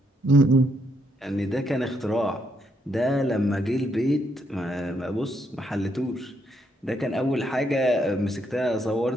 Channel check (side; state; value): both; normal; correlation 0.75